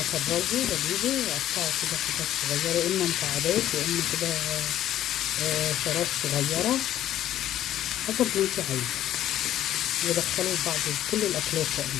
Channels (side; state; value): right; quieter; 12.4 dB